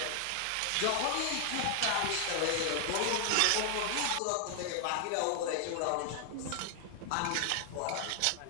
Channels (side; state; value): both; different; correlation 0.00